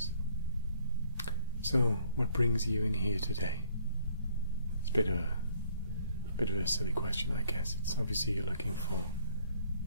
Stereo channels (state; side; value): inverted; both; correlation -0.63